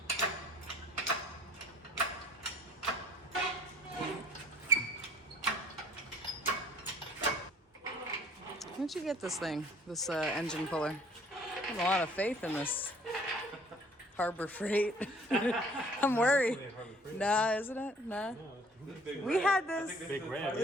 Where'd you get this thing? This engine puller? I have a lot of faith in this Harbor Freight. I'm worried. Nah, isn't it? Nah. We had this. Big red.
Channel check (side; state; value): both; normal; correlation 0.55